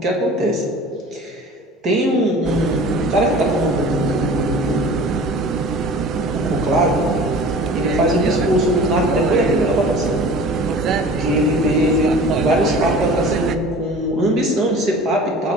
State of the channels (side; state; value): both; normal; correlation 0.42